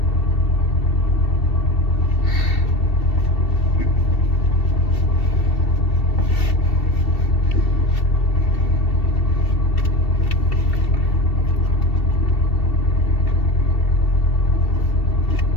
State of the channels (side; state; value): right; late; 2.7 ms